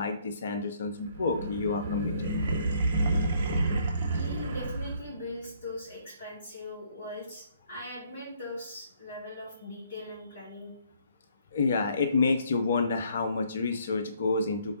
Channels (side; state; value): both; inverted; correlation -0.66